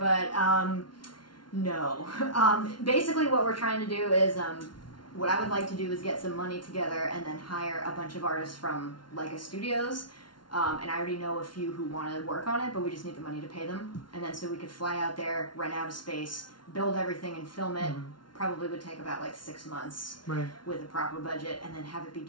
no. Basically, what we're trying to do is what I would like to do is get some money together and then hire a bunch of artists from Leica Studios. And I already know a few who want to work on it, but we just need the money to pay them. And then so we could fly out there, rent out a space, build everything and film it. Probably would take about like 6 months with a proper budget, and then have it be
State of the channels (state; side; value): late; right; 0.71 ms